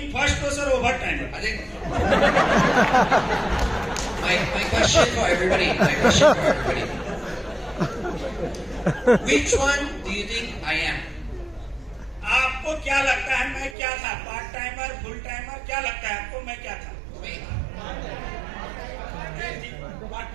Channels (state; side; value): drops out; left; at 13.8 s